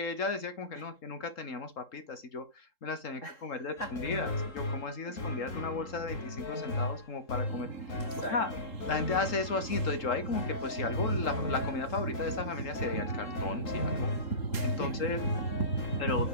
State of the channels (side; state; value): right; late; 3.8 ms